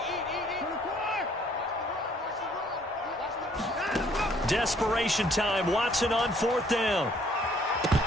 Desperation time. Watson on 4th down.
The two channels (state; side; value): normal; both; correlation 0.62